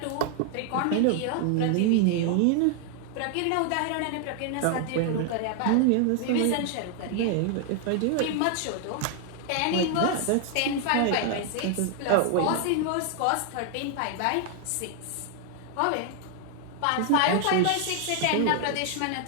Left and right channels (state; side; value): different; both; correlation 0.00